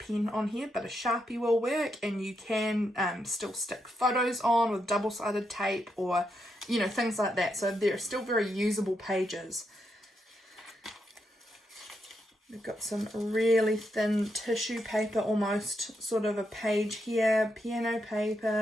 on here, but a Sharpie will work, and you can still stick photos on with double-sided tape or, you know, things like that. So they're still very usable pages. We've got some really thin tissue paper, almost sort of a page here, piano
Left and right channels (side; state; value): both; normal; correlation 0.82